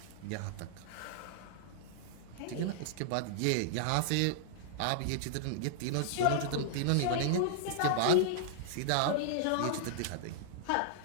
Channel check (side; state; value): both; different; correlation -0.01